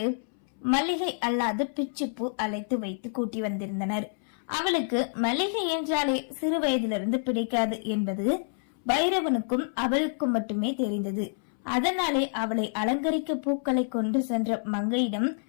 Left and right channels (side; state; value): right; silent; 59 dB below the other